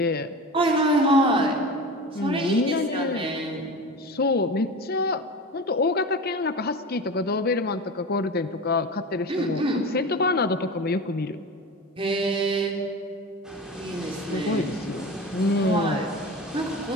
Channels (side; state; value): both; normal; correlation 0.30